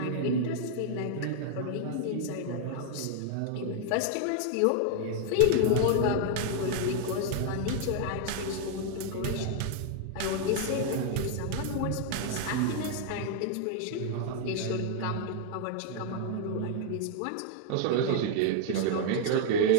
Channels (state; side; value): different; both; correlation 0.00